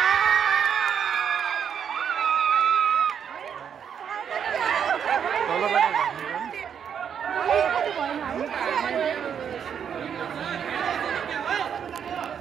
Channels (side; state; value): left; quieter; 7.9 dB